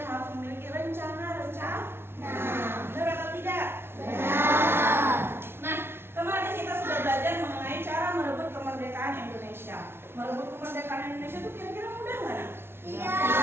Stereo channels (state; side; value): late; left; 0.12 ms